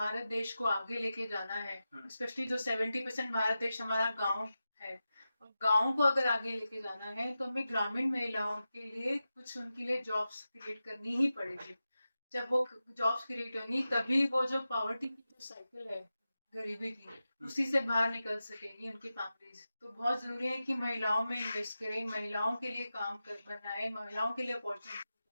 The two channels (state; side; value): inverted; both; correlation -0.93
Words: देश को आगे लेके जाना है, हम्म। स्पेशली जो 70% भारत देश हमारा गांव है, और गांव को अगर आगे लेके जाना है तो हमें ग्रामीण महिलाओं के लिए कुछ उनके लिए जॉब्स क्रिएट करनी ही पड़ेगी। जब वो जॉब्स क्रिएट होंगी तभी वो जो पॉवर्टी की जो साइकिल है, गरीबी की, हम्म। उसी से बाहर निकल सकेगी उनकी फैमिलीज। तो बहुत जरूरी है कि महिलाओं में इन्वेस्ट करें, महिलाओं के लिए काम कर बनाए, महिलाओं के लिए अपॉर्चुनिटी,